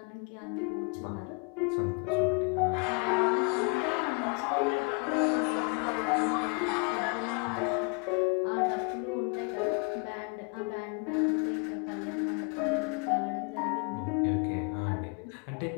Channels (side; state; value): right; quieter; 34.6 dB